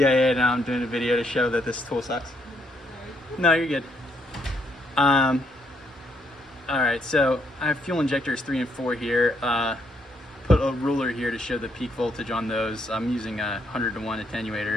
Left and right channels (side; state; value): both; normal; correlation 0.73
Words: now I'm doing a video to show that this tool sucks. Alright. No, you're good. All right, so I have fuel injectors 3 and 4 here. Put a ruler here to show the peak voltage on those. I'm using a 100-to-1